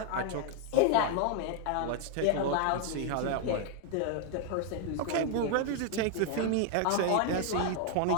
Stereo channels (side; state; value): both; different; correlation 0.00